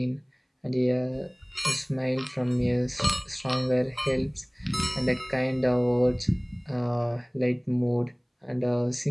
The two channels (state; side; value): identical; both; correlation 1.00